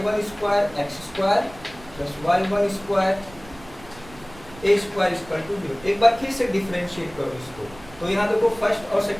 x² plus y1² a² equal to 0। एक बार फिर से डिफरेंशिएट करो इसको, तो यहाँ देखो फर्स्ट और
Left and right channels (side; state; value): right; noise; rumble, 20 dB below the sound